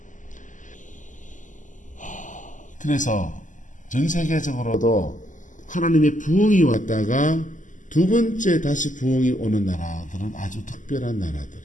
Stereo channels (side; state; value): right; late; 0.37 ms